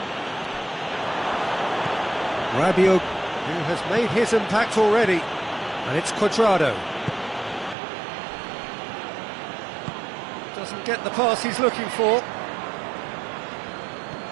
Rabiot, who has made his impact already. And it's Cuadrado. Doesn't get the pass he's looking for.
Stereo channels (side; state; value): left; drops out; at 7.8 s